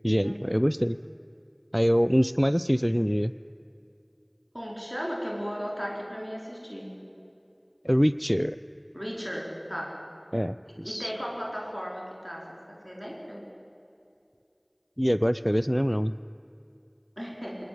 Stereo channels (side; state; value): both; identical; correlation 1.00